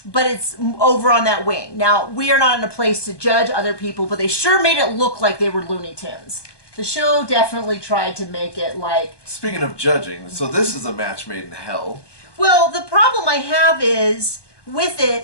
but it's over on that wing. Now, we are not in a place to judge other people, but they sure made it look like they were Looney Tunes. The show definitely tried to make it like... Speaking of judging, so this is a match made in hell. Well, the problem I have is, with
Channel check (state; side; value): late; right; 1.2 ms